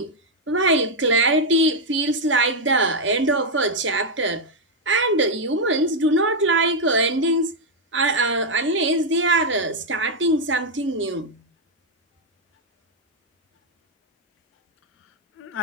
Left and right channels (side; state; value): both; normal; correlation 0.00